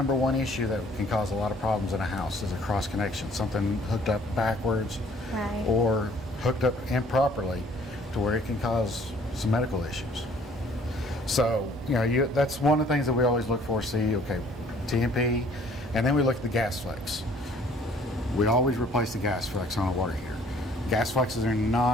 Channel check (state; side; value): normal; both; correlation 0.57